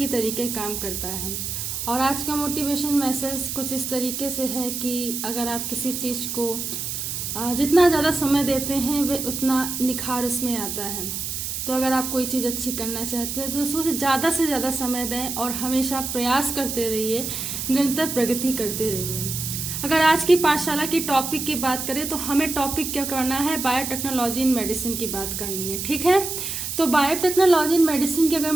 तरीके काम करता है। और आज का मोटिवेशन मैसेज कुछ इस तरीके से है कि अगर आप किसी चीज को जितना ज्यादा समय देते हैं वे उतना निखार उसमें आता है। तो अगर आप कोई चीज अच्छी करना चाहते हैं तो उसमें से ज्यादा समय दें और हमेशा प्रयास करते रहिए, निरंतर प्रगति करते रहिए। अगर आज की पाठशाला की टॉपिक की बात करें तो हमें टॉपिक क्या करना है, बायोटेक्नोलॉजी इन मेडिसिन की बात करनी है। ठीक है, तो बायोटेक्नोलॉजी इन मेडिसिन की अगर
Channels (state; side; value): noise; right; hiss, 4 dB below the sound